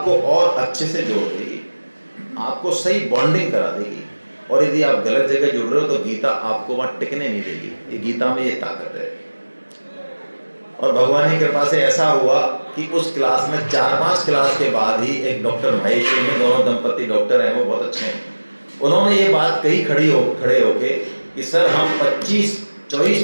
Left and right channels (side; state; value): both; inverted; correlation -1.00